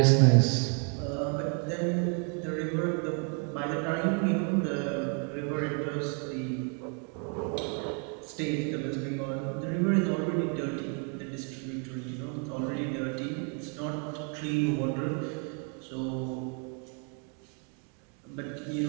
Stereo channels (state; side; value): quieter; left; 39.8 dB